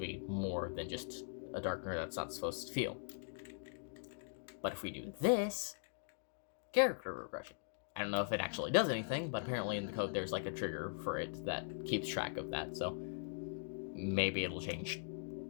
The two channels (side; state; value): right; silent; digital silence